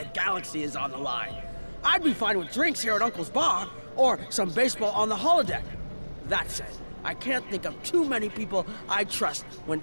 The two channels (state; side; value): inverted; both; correlation -1.00